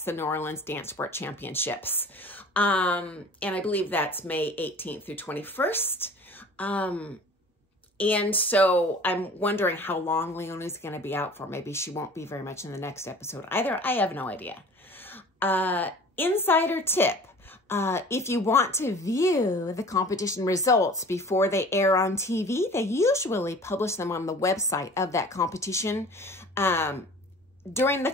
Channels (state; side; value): normal; both; correlation 0.44